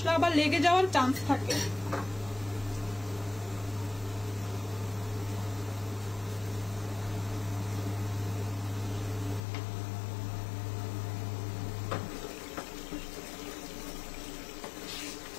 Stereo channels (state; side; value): drops out; right; at 9.4 s